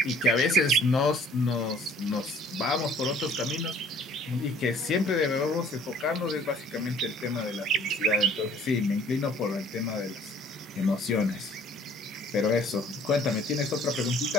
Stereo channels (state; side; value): normal; both; correlation 0.56